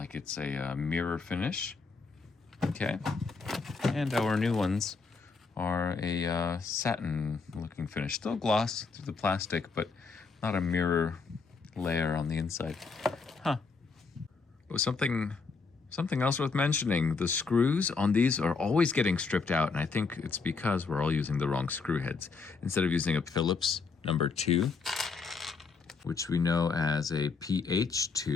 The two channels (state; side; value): quieter; right; 4.6 dB